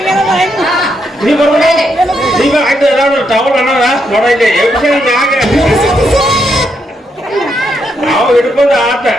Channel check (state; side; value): normal; both; correlation 0.79